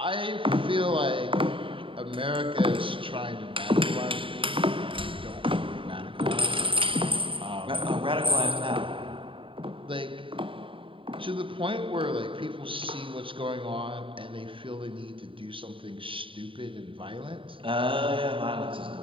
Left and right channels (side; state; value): left; late; 0.25 ms